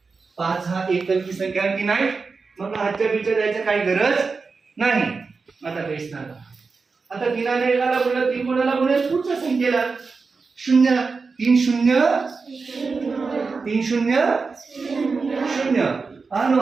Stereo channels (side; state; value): left; quieter; 4.6 dB